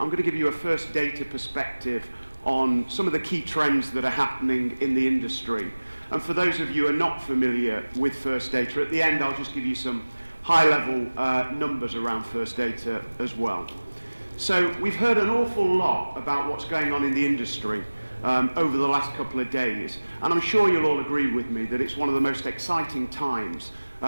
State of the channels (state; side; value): inverted; both; correlation -1.00